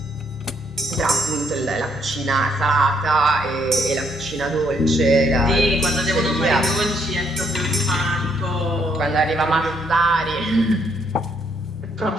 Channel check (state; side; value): normal; both; correlation 0.71